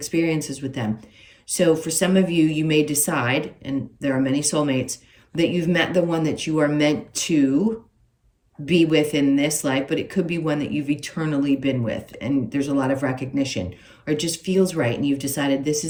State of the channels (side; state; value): both; identical; correlation 1.00